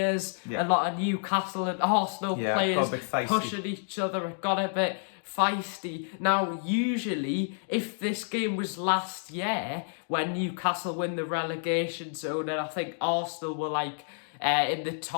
A lot of Newcastle and Arsenal players pushing each other. It got a bit feisty. Now, usually, if this game was last year when Newcastle win the relegation zone, and I think Arsenal were in the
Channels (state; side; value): silent; right; digital silence